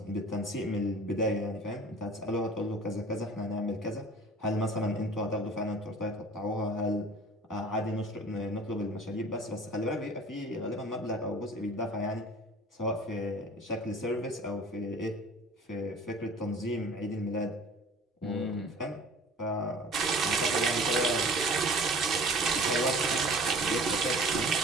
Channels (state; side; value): normal; both; correlation 0.45